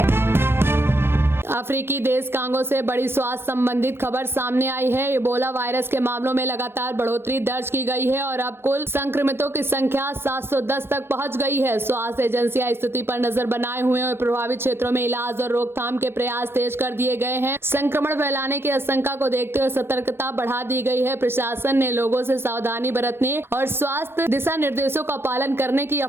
अफ्रीकी देश कांगो से बड़ी स्वास्थ्य संबंधित खबर सामने आई है। इबोला वायरस के मामलों में लगातार बढ़ोतरी दर्ज की गई है और अब कुल संक्रमितों की संख्या 710 तक पहुंच गई है। स्वास्थ्य एजेंसियां स्थिति पर नजर बनाए हुए और प्रभावित क्षेत्रों में इलाज और रोकथाम के प्रयास तेज कर दिए गए हैं। संक्रमण फैलाने की आशंका को देखते हुए सतर्कता बढ़ा दी गई है। प्रशासन ने लोगों से सावधानी बरतने और स्वास्थ्य दिशा निर्देशों का पालन करने की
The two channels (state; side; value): late; left; 0.11 ms